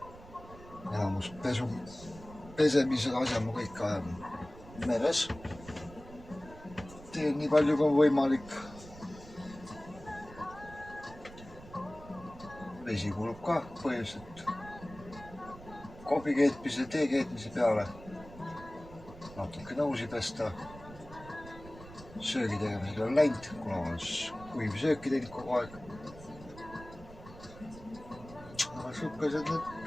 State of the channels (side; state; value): right; noise; rumble, 17 dB below the sound